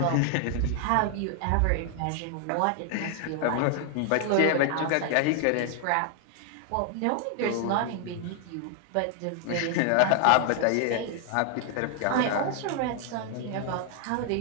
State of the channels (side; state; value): both; different; correlation 0.00